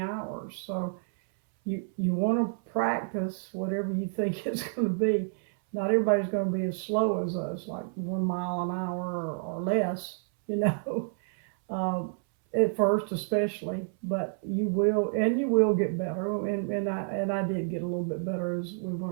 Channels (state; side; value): silent; left; 58 dB below the other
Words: hours. So you want to practice whatever you think it's going to be. Not everybody's going to be as slow as us, like 1 mile an hour or less, at first especially. But you will get better. And I did get a little bit better as I